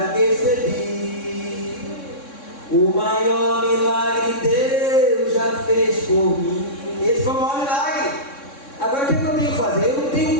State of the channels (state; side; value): late; right; 3.6 ms